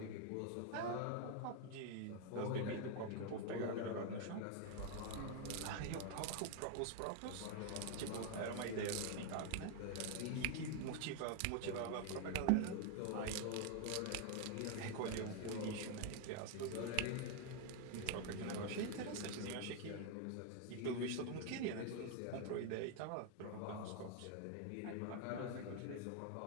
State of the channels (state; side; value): different; both; correlation 0.00